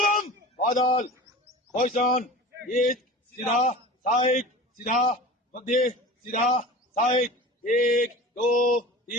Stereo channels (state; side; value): normal; both; correlation 0.35